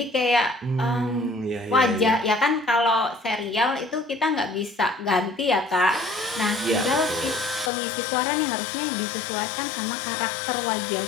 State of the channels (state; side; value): drops out; right; at 7.7 s